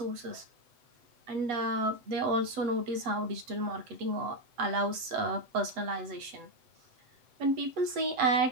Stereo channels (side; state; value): left; late; 7.8 ms